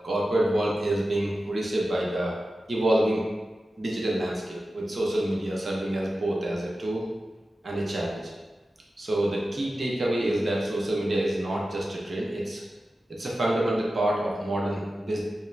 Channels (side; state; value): both; normal; correlation 0.93